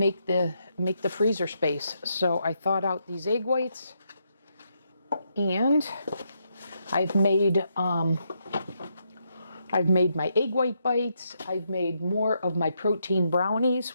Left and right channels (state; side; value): inverted; both; correlation -0.79